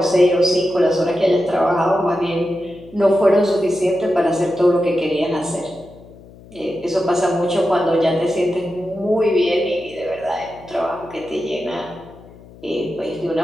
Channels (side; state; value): left; noise; hum, 21 dB below the sound